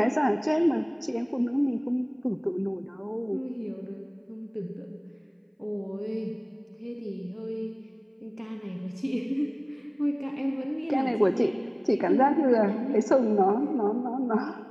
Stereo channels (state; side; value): identical; both; correlation 1.00